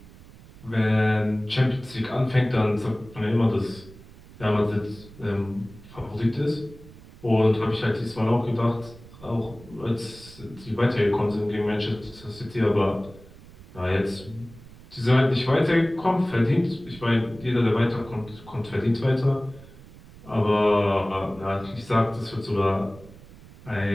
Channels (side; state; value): right; noise; rumble, 20 dB below the sound